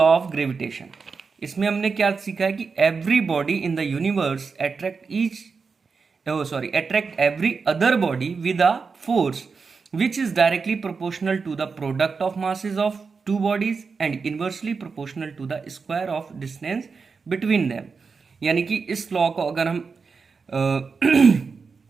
of gravitation. इसमें हमने क्या सीखा है कि every body in the universe attract every other body with a force which is directly proportional to the product of masses of two bodies and inversely proportional to the square of distance between them। यानी कि इस law को अगर हम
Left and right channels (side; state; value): left; quieter; 5.0 dB